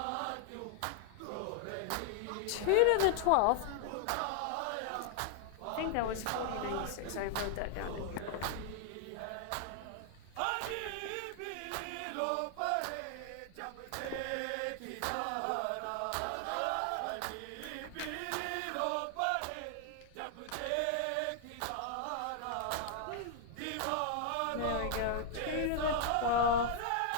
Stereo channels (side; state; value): both; different; correlation 0.00